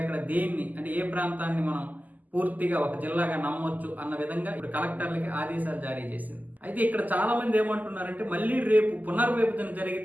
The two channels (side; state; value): left; late; 0.081 ms